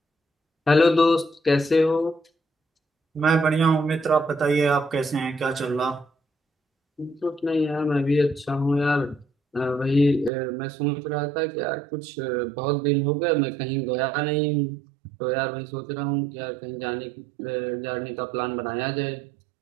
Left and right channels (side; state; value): left; drops out; at 10.3 s